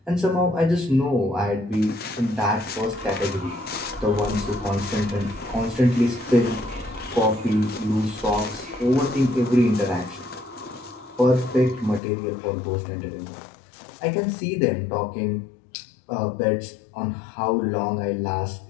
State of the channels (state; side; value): drops out; right; at 12.0 s